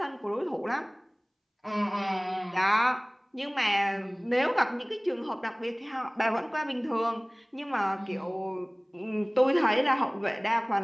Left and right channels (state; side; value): identical; both; correlation 1.00